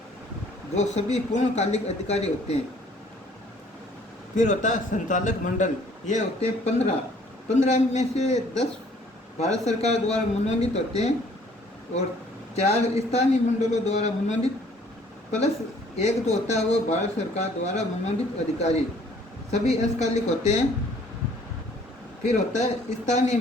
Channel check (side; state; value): both; normal; correlation 0.58